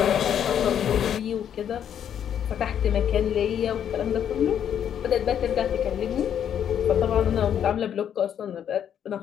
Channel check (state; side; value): quieter; right; 9.2 dB